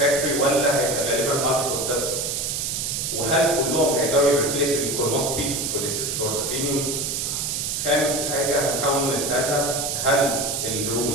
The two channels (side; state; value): right; noise; hiss, 1 dB below the sound